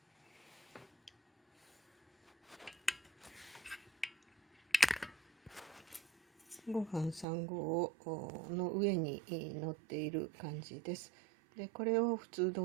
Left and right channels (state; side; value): drops out; left; at 7.2 s